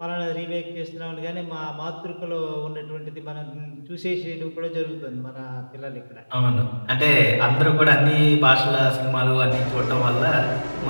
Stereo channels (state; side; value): inverted; both; correlation -1.00